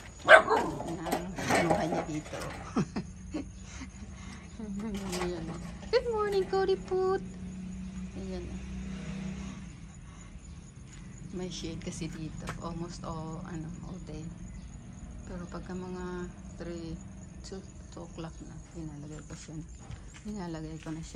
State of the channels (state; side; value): identical; both; correlation 1.00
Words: Kinuha niya dito. Good morning, Cody Put. Ayan. May shade kasi dito. Almost all day. Pero pagka mga 2 o'clock na, Nilalagay ko na